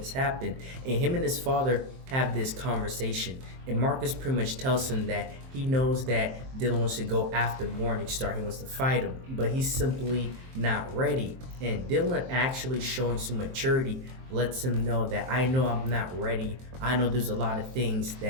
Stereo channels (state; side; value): late; left; 23 ms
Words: happened. And him and his father have this conversation, and Marcus pretty much tells him that he knows that Dylan wants to go after Morningstar. He wants to fight him, but he's simply not ready. And Dylan, actually showing some maturity, lets him know that I know I'm not ready. I know there's a lot of things